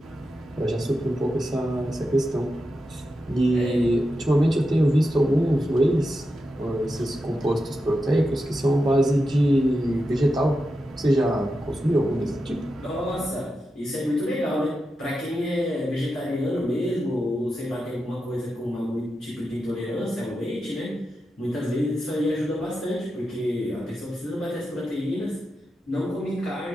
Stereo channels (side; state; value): both; normal; correlation 0.89